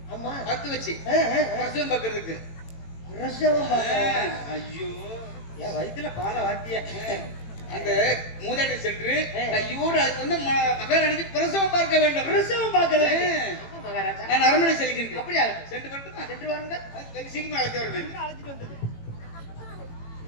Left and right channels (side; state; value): right; late; 18 ms